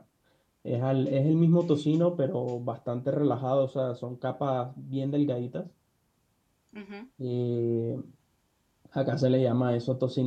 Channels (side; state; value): both; identical; correlation 1.00